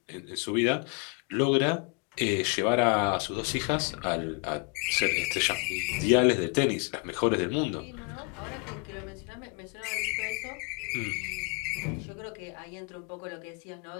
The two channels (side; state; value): right; quieter; 34.0 dB